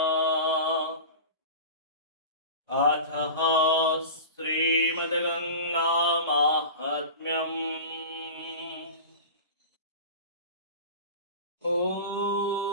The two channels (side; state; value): both; inverted; correlation -0.32